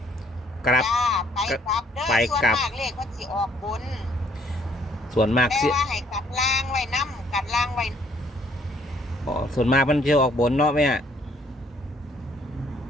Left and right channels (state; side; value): normal; both; correlation 0.64